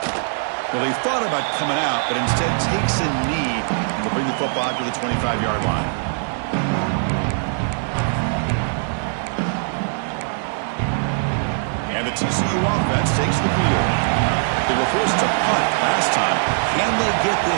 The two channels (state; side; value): silent; left; 65 dB below the other